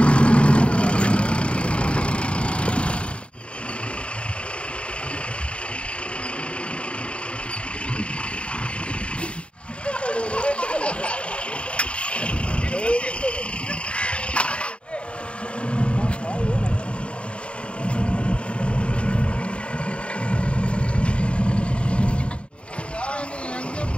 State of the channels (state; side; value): late; right; 0.058 ms